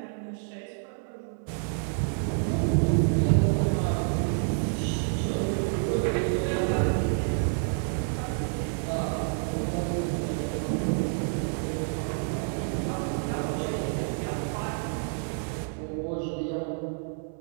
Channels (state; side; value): silent; left; 59 dB below the other